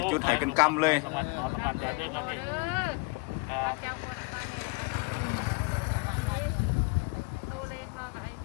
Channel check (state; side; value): quieter; right; 29.7 dB